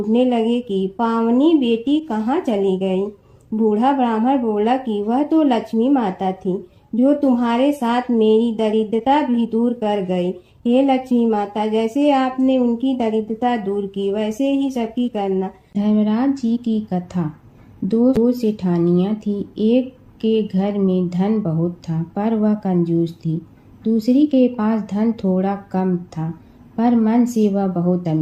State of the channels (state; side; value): identical; both; correlation 1.00